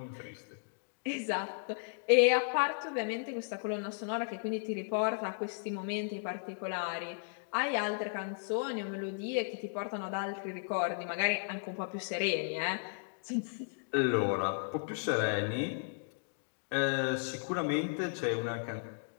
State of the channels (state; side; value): silent; right; digital silence